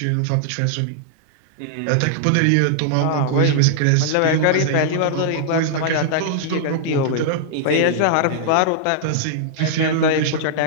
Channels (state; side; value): different; both; correlation -0.01